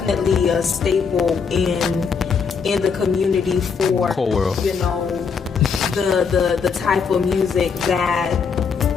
a staple in the community for Cole world. You know, the type of music that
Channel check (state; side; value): quieter; right; 5.8 dB